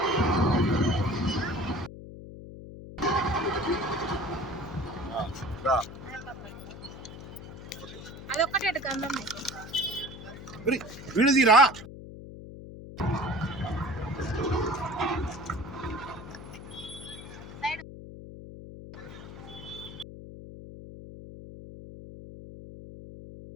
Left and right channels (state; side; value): noise; left; hum, 13 dB below the sound